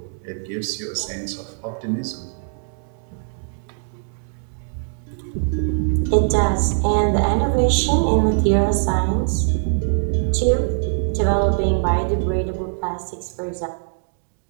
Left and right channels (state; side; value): silent; left; digital silence